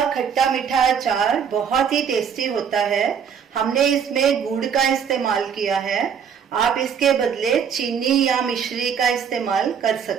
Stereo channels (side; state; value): left; quieter; 7.4 dB